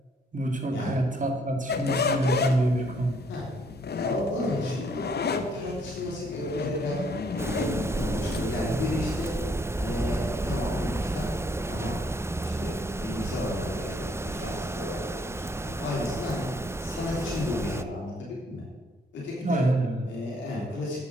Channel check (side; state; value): both; normal; correlation 0.67